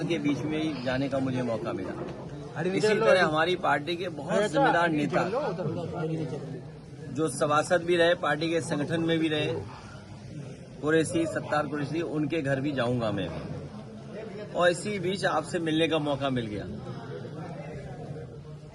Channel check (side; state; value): both; identical; correlation 1.00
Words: के बीच में ही जाने का मुझे मौका मिला। इसी तरह हमारी पार्टी के बहुत जिम्मेदार नेता जो सभासद भी रहे, पार्टी के संगठन में भी रहे, कुरैशी, सत्तार कुरैशी, उनके घर भी जाऊंगा मैं। और इसी बीच आपसे मिलने का मौका मिल गया।